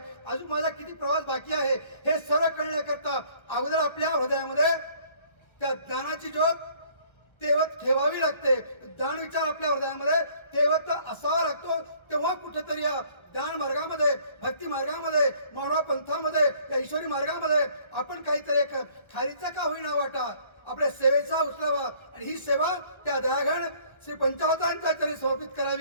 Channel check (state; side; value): late; right; 1.2 ms